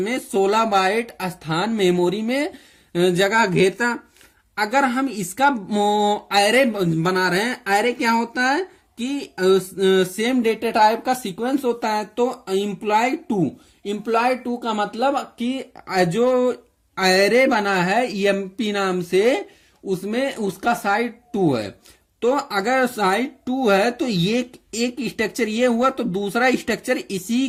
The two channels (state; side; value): identical; both; correlation 1.00